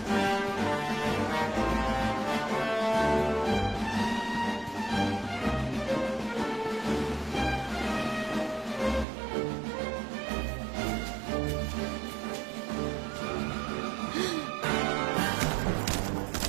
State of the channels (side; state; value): left; drops out; at 9.1 s